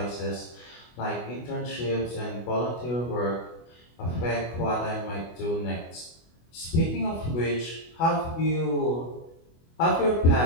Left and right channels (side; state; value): right; late; 24 ms